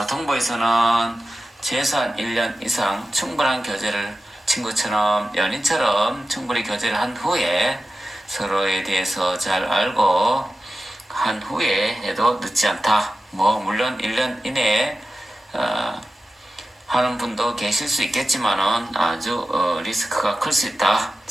최소한 1년 이상 충분한 교제를 친구처럼 연인처럼 충분히 교제를 한 후에 서로에 대해서 잘 알고 한 후에 해도 늦지 않다. 뭐 물론 1년 이내에 하는 분도 계실 수 있겠지만은 아주 리스크가 클 수 있다.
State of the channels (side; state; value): both; normal; correlation 0.94